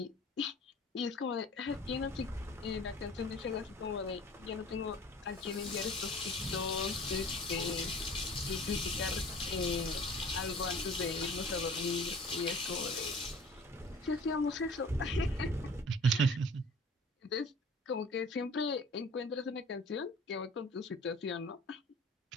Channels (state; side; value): normal; both; correlation 0.46